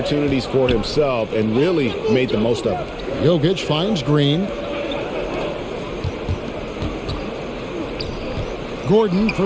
for himself and really made the most of it. Jokic finds Green. Gordon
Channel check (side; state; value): both; identical; correlation 1.00